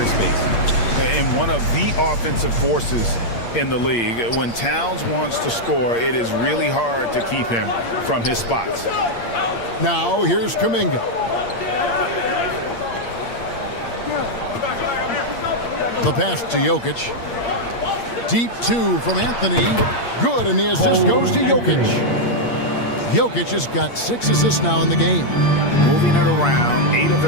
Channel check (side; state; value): right; late; 8.6 ms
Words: And one of the offensive forces in the league. When Towns wants to score, it is really hard to keep him from his spots. Now here's Kuminga. The pass to Jokic. Deep 2 from Anthony. Good, and the assist goes to Jokic. Jokic has got 6 assists now in the game. Moving it around, 8 of